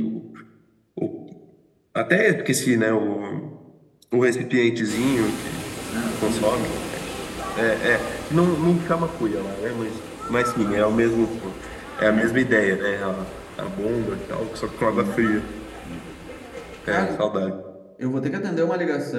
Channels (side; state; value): both; identical; correlation 1.00